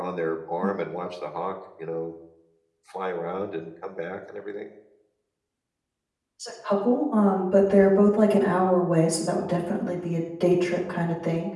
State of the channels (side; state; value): both; identical; correlation 1.00